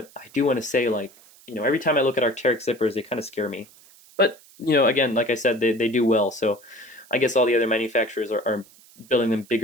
I do want to say, every time I look at Arc'Teryx zippers, they kind of scare me. But, again, like I said, they do well, so I guess all the other manufacturers are building them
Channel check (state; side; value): noise; right; hiss, 25 dB below the sound